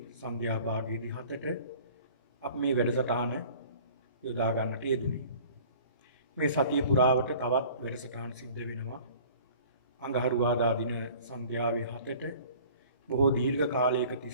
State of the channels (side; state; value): both; inverted; correlation -0.48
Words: සන්ධ්‍යා භාගයේදී 7ට අපි මේ වැඩසටහන යොදා ගන්නට යෙදුනේ. මේ සතිය පුරාවට තවත් වැඩසටහන් සිද්ධ වෙනවා. අඟහරුවාදා දින සන්ධ්‍යාවේ 7ට බොහෝ දීර්ඝ කාලයක